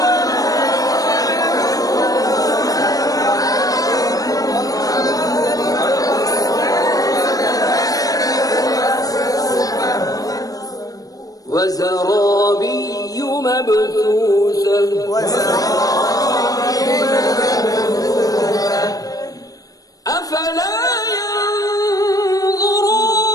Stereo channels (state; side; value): late; right; 0.18 ms